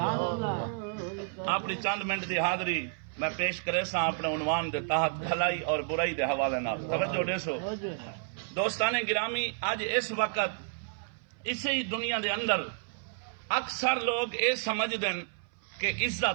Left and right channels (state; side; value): silent; left; 57 dB below the other